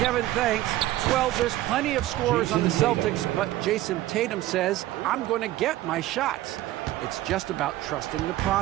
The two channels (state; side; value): quieter; left; 15.5 dB